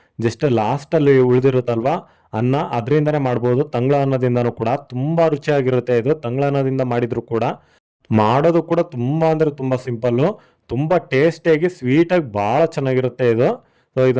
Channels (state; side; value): identical; both; correlation 1.00